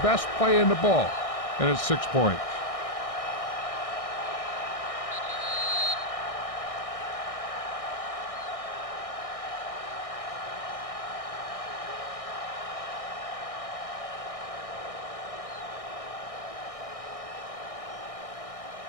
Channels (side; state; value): right; late; 1.6 ms